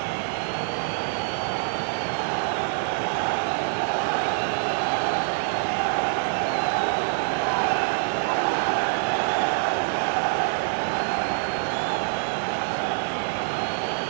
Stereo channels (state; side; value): silent; left; digital silence